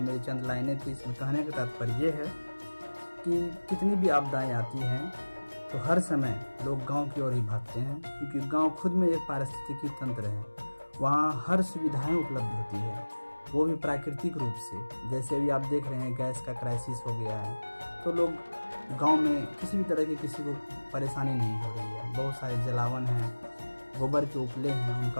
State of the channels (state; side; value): inverted; both; correlation -1.00